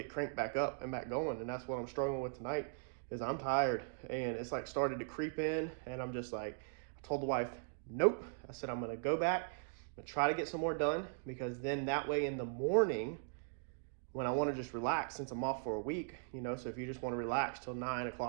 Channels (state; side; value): silent; left; digital silence